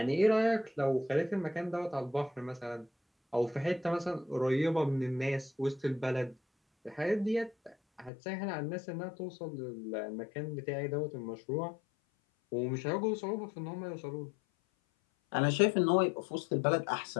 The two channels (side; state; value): right; drops out; at 8.1 s